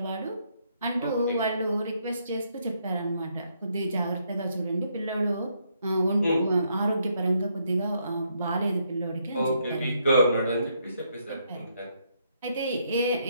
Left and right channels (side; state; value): both; inverted; correlation -0.74